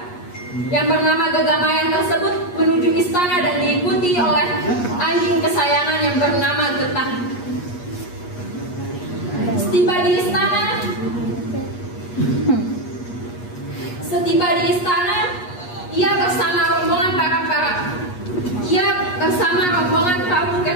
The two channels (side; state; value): right; late; 8.3 ms